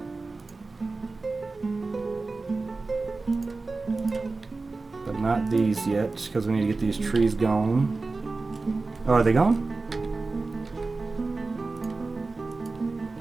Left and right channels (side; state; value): left; quieter; 3.7 dB